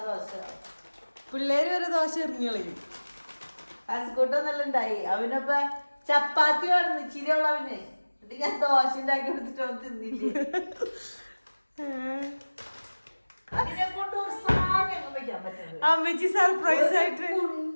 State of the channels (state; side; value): inverted; both; correlation -1.00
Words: പിള്ളേര് വരെ ദോശ എറിഞ്ഞു കളയും. അസുകൂട്ടൊന്നെല്ലാം ഉണ്ടായി. അവനപ്പ ചപ്പാത്തി വേണം ഇച്ചിരിയുള്ള അവന്. എന്നിട്ട് ഞാൻ ദോശ ഉണ്ടാക്കി കൊടുത്തിട്ട് അവൻ തിന്നില്ലേ. അതിനെ കൊണ്ട് ഒരു സാധനം വെക്കാൻ പറ്റുന്നത്. അമ്മച്ചി സർപ്രൈസ് ആയിട്ട്